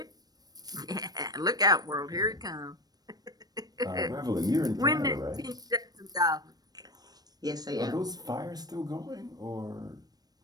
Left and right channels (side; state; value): left; late; 0.19 ms